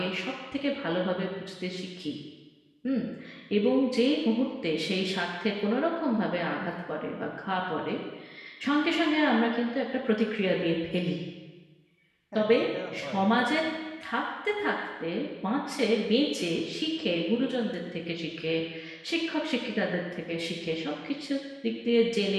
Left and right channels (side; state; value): both; identical; correlation 1.00